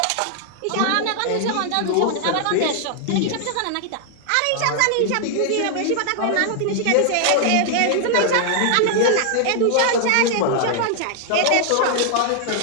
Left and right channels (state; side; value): different; both; correlation 0.00